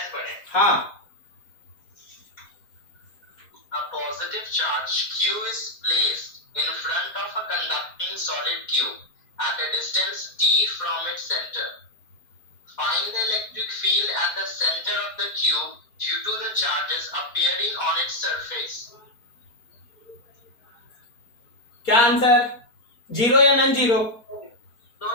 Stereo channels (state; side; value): late; right; 4.1 ms